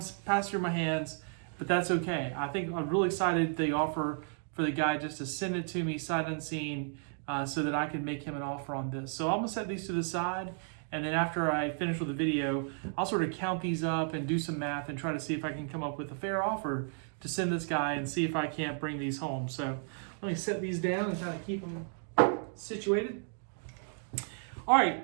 pass through my hands, but that's okay. I think I'm really excited the offer for the guy just to send it to me sight unseen so that I can make him an offer on this. So I'm gonna set these to the side, and then after I finish with the video, I'll sort of count these up and do some math and try to see if I can come up with a fair offer to send this guy and see if I can't bring these home. So let me set these down and kind of keep them situated. All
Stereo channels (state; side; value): silent; left; 56 dB below the other